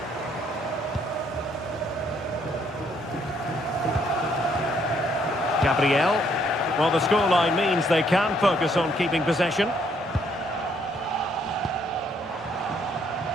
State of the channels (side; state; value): both; normal; correlation 0.68